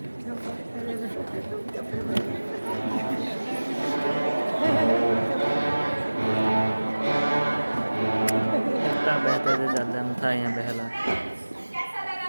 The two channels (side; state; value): both; inverted; correlation -1.00